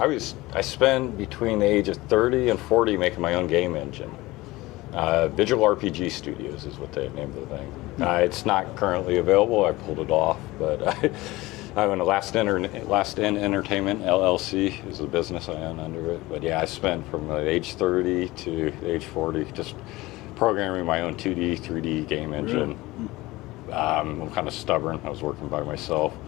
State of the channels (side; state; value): right; quieter; 19.7 dB